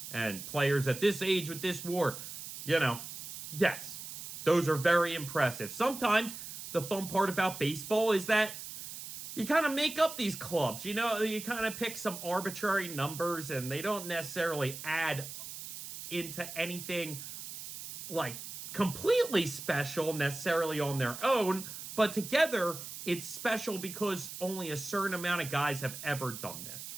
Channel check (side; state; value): right; noise; hiss, 10 dB below the sound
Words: and players at this age with this WAR. Yes, those are very impressive. Sometimes the fun part about baseball is that you kind of make up these clubs. You kind of pick some arbitrary numbers and they don't necessarily add into anything like completely special necessarily on their own, but together it's special because only a certain amount of guys have ever done this,